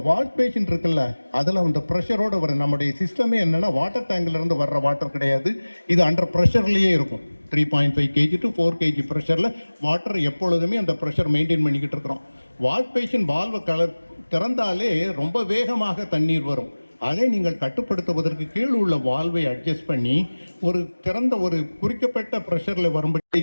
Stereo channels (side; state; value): both; inverted; correlation -1.00